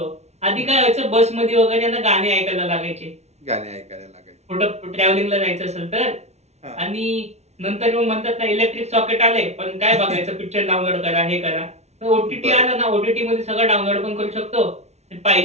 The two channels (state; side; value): late; left; 0.32 ms